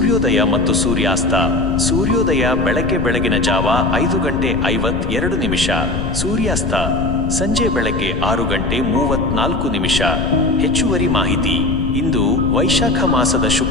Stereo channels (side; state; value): left; noise; rumble, 5 dB below the sound